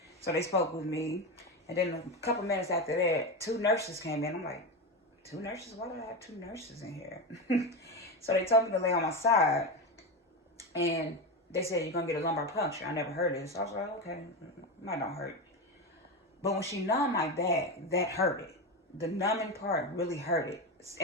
So they spoke with me. And then a couple minutes after that, two nurses came in. I'm like, two nurses? Why do I have two nurses in here? So they told me to lay on my side. And they said, you're going to get a lumbar puncture. I never heard this. I was like, okay, might not hurt. But when she numbed my back, that hurt it. The numbing part really hurt it.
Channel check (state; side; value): normal; both; correlation 0.17